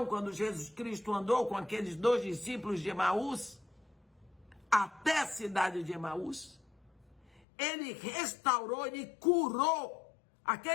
quando Jesus Cristo andou com aqueles 2 discípulos de Emaús, até a cidade de Emaús? Ele restaurou, ele curou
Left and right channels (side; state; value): right; drops out; at 7.4 s